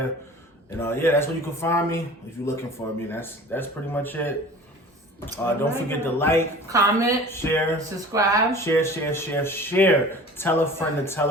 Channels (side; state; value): both; normal; correlation 0.42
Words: And yeah, that's where you can find me if you're looking for me. That's pretty much it. Don't forget to like, comment, share, subscribe, share. Tell a friend to tell